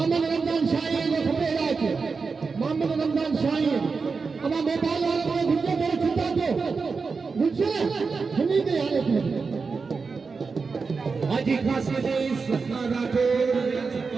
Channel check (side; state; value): left; quieter; 4.8 dB